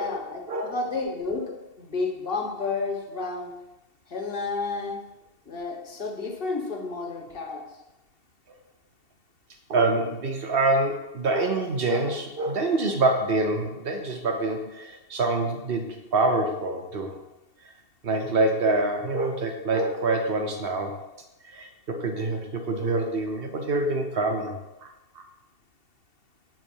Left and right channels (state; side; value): late; left; 2.7 ms